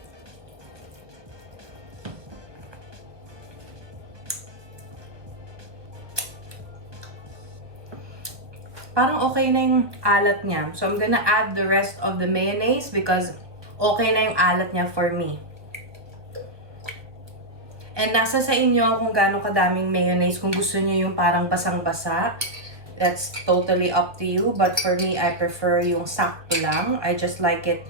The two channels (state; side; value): late; left; 1.3 ms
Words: Parang okay na yung alat niya. So, I'm gonna add the rest of the mayonnaise because okay na yung alat niya for me. And nasa sa inyo kung gaano kadaming mayonnaise. Kung gusto niyo yung parang basang-basa, that's totally up to you. But for me, I prefer yung sakto lang. I just like it.